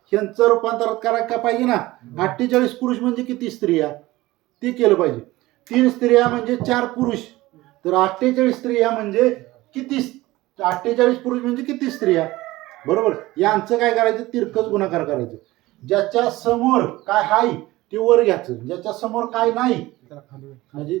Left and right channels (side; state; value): left; quieter; 18.6 dB